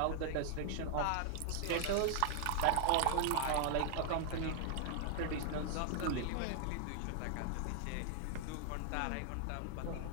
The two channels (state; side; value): different; both; correlation 0.00